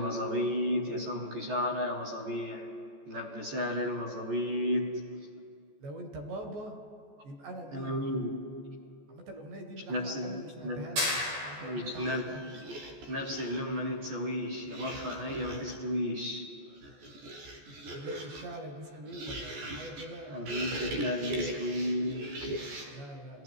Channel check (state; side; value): late; left; 14 ms